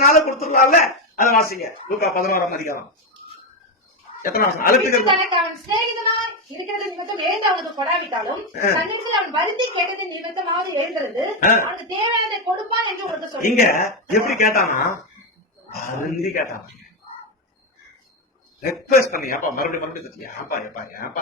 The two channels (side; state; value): both; normal; correlation 0.09